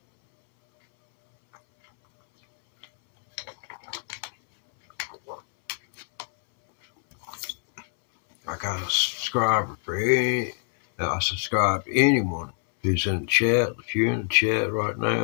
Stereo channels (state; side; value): silent; right; 62 dB below the other